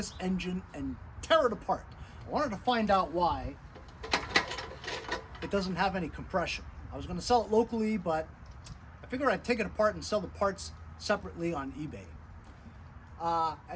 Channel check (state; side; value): identical; both; correlation 1.00